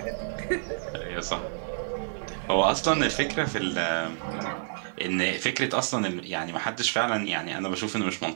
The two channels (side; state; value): left; silent; digital silence